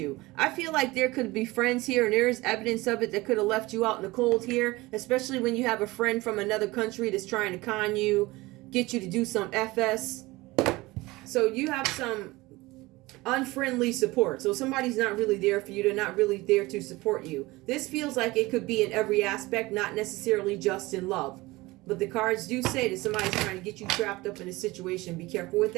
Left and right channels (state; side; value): quieter; left; 20.8 dB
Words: I feel like there could be friends here, and there is evidence of it that could have left you out in the cold here, especially when you have a friend from another country that's trying to con you, get you to do some FS. So you have some unfriendly support. So somebody's not really there for you. They're not really there to support you. This feels like it could be in every aspect, not necessarily just in love. But the cards do say that somebody's trying to get you trapped up in a situation. Be careful with